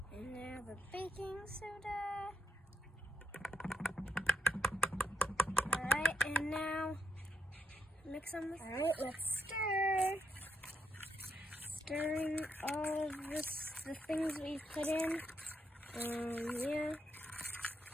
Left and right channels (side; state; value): both; normal; correlation 0.79